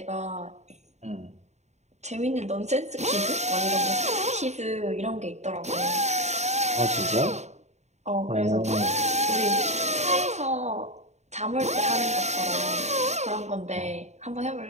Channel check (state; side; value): late; left; 0.33 ms